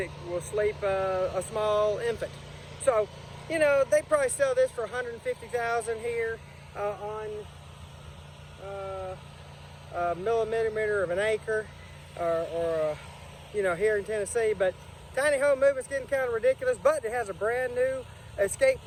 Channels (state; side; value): identical; both; correlation 1.00